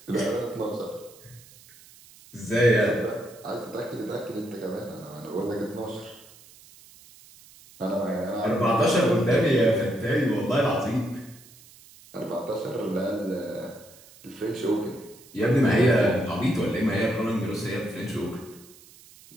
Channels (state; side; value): noise; right; hiss, 23 dB below the sound